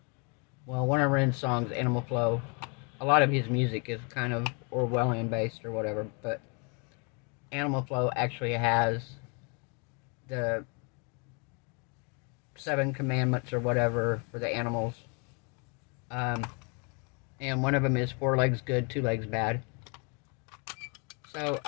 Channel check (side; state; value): right; quieter; 35.0 dB